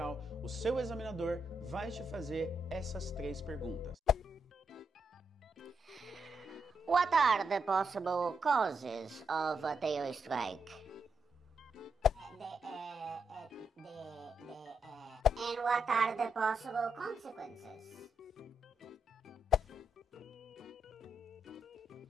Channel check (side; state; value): both; normal; correlation 0.81